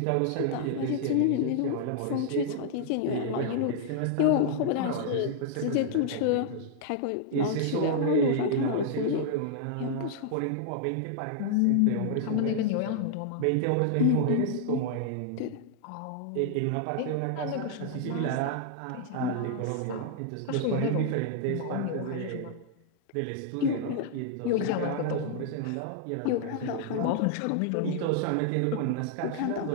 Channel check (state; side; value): different; both; correlation -0.01